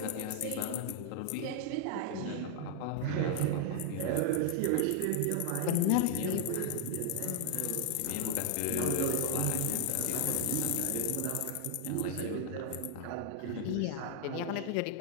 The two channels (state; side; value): different; both; correlation 0.00